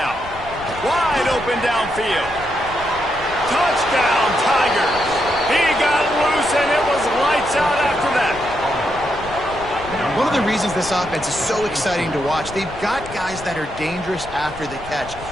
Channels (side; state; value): left; noise; rumble, 15 dB below the sound